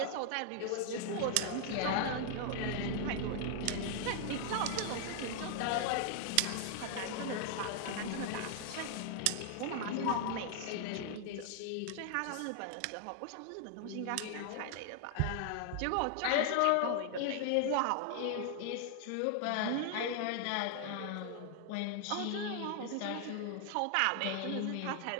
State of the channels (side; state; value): both; different; correlation 0.00